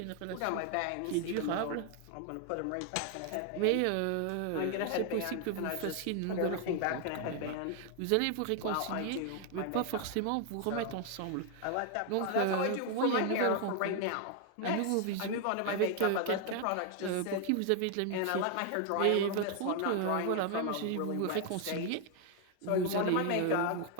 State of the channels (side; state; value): both; different; correlation 0.00